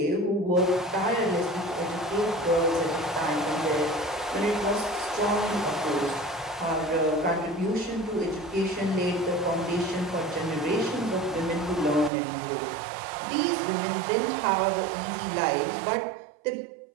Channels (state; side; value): drops out; left; at 12.1 s